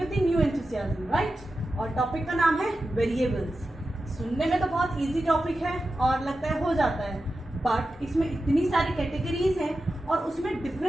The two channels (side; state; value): both; normal; correlation 0.92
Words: new enthusiasm, right. और टॉपिक का नाम है वेरिएबल्स। सुनने में तो बहुत इजी टॉपिक है और लगता है हो जाता है, बट इसमें इतनी सारी कैटेगरीज हैं और उसमें